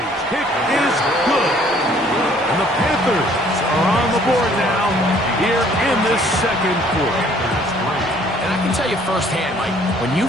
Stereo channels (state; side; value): normal; both; correlation 0.59